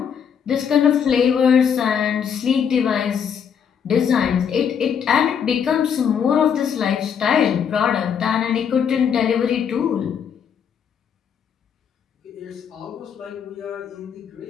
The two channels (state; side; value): quieter; right; 7.6 dB